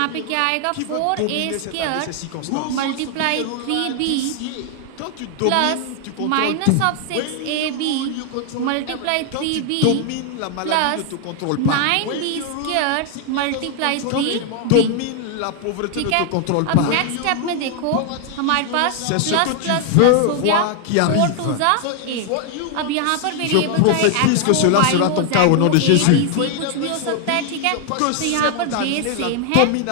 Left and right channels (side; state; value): both; different; correlation 0.00